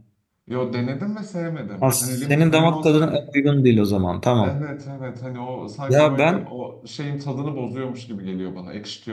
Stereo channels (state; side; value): identical; both; correlation 1.00